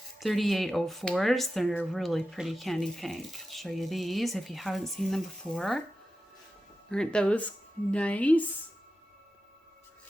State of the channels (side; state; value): both; normal; correlation 0.92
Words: 3804s. They're really pretty candy pink. I'll show you these if you haven't seen them before. Aren't those nice?